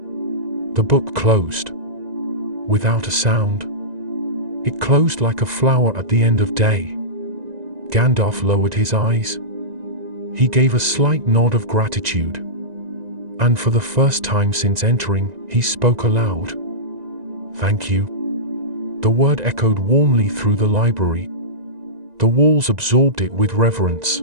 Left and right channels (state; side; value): late; left; 1.9 ms